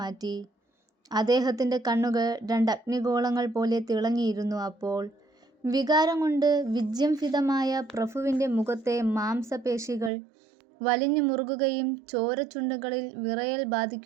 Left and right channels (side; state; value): left; drops out; at 10.1 s